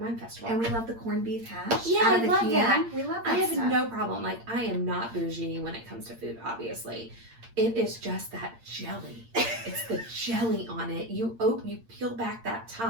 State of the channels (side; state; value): left; late; 8.7 ms